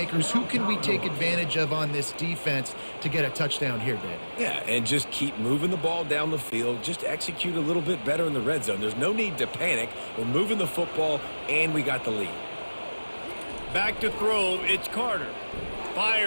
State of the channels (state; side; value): inverted; both; correlation -1.00